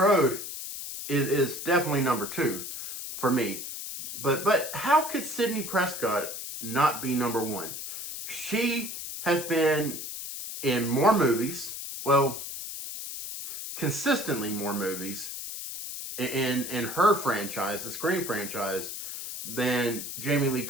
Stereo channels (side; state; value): left; noise; hiss, 7 dB below the sound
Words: is definitely number 2 for me. But how could Sidney Prescott not be number 1? She has been in more movies, well, consistently more movies in her franchise, the Scream franchise, than Jamie Lee